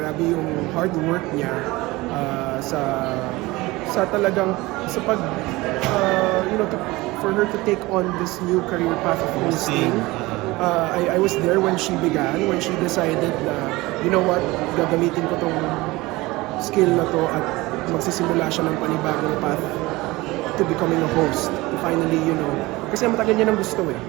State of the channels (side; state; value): left; quieter; 20.9 dB